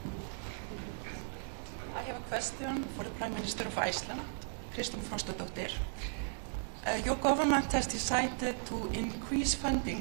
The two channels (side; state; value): left; silent; digital silence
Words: I have a question for the Prime Minister of Iceland, Kristrún Frostadóttir. Your government has decided to increase